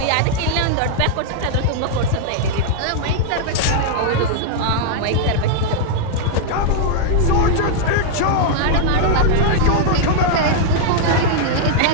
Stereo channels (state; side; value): different; both; correlation -0.01